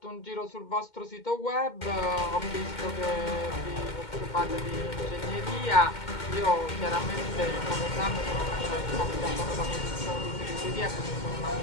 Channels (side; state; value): right; late; 2.2 ms